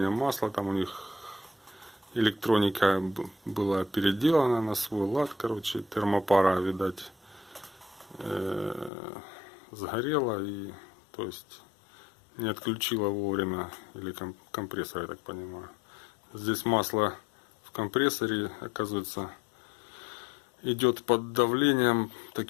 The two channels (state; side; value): drops out; right; at 8.9 s